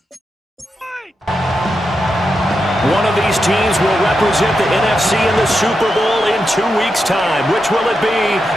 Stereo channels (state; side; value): normal; both; correlation 0.87